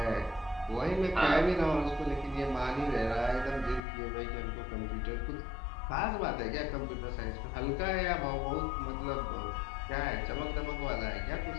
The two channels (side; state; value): right; drops out; at 3.8 s